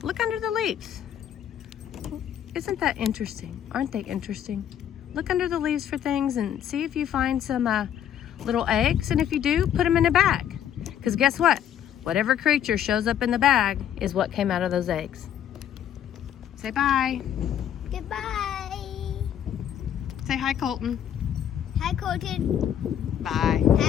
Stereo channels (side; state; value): right; quieter; 9.9 dB